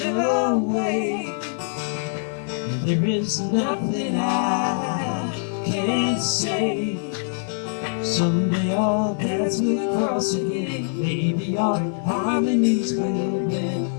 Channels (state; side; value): silent; right; digital silence